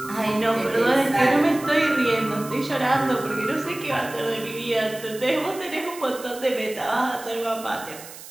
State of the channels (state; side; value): noise; right; hiss, 15 dB below the sound